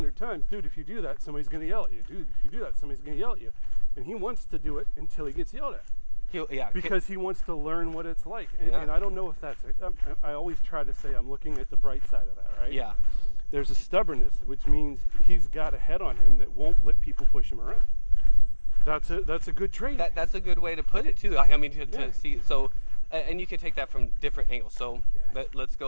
times, dude, if you do that, somebody's going to yell at you. Dude, if you do that, somebody's going to yell at you. And he wants to do it until he gets yelled at. Because he wants to learn what it's like. And I don't know if that's it. I always try to say I'm looking at the bright side of that, right? Yeah. There's a stubbornness, which means he's got a head on him that won't let people push him around. That's a good trait. That's a good way to put it too. To see. So, and you can take that from different angles. So let's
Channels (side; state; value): both; inverted; correlation -1.00